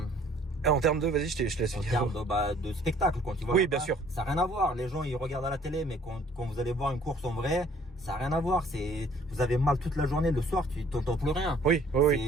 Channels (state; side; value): normal; both; correlation 0.57